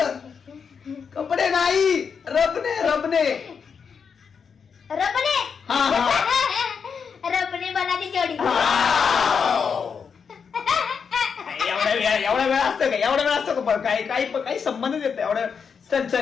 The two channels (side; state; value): right; quieter; 6.3 dB